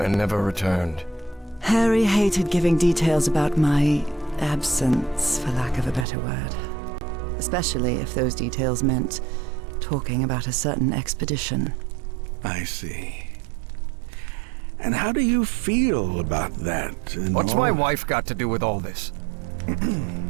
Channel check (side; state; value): left; drops out; at 6.1 s